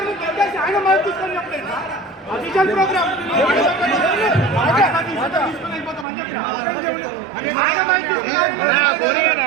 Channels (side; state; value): left; drops out; at 6.1 s